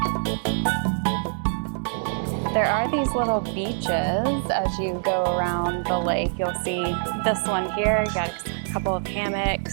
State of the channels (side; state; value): left; silent; digital silence